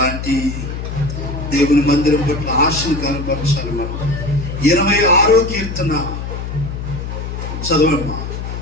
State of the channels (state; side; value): noise; left; hum, 6 dB below the sound